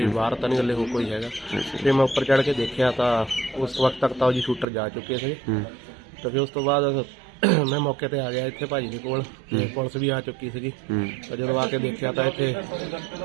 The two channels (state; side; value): drops out; left; at 4.7 s